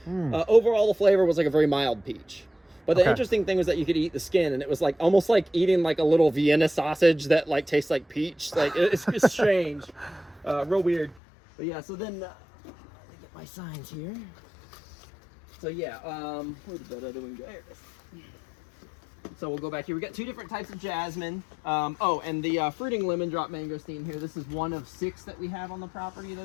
Overall, the flavor was like a very mild peach. But the interesting thing was that you could eat the skin, and it was like almost like eating like a little Vienna sausage that like tastes like peach. Like it's strange, real weird. But yeah, so then let me get my signs here. So yeah, where the other one go? There it is. So we'll go back here. We got 2 different types of jasmine. Oh, and the fruiting lemon drop mangosteen here. This is one of 6 that we have on the property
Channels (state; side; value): drops out; right; at 11.2 s